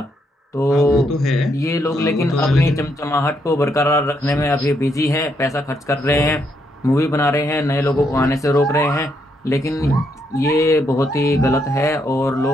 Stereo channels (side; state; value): both; normal; correlation 0.76